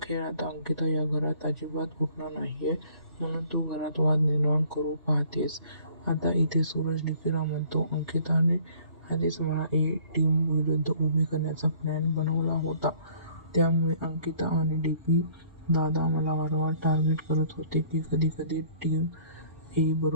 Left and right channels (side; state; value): both; inverted; correlation -0.55